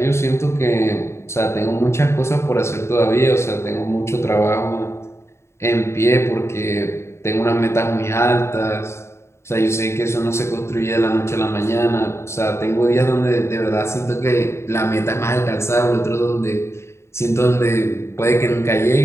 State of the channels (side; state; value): right; late; 0.13 ms